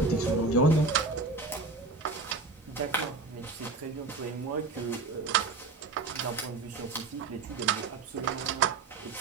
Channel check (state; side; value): quieter; left; 3.8 dB